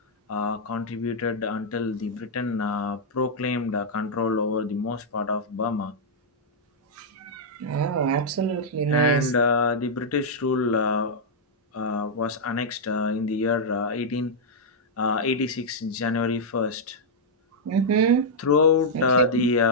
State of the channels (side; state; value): both; normal; correlation -0.06